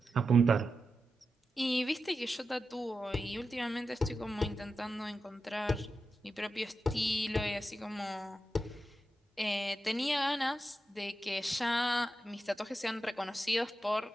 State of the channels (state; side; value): normal; both; correlation 0.90